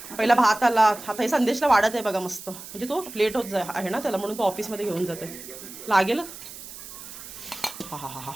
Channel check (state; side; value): noise; right; hiss, 13 dB below the sound